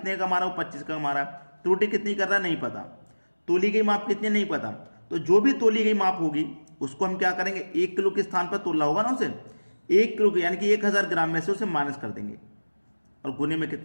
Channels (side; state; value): both; inverted; correlation -1.00